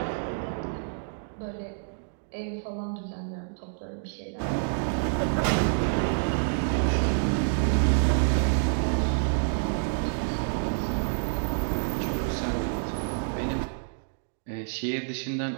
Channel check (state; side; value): silent; left; digital silence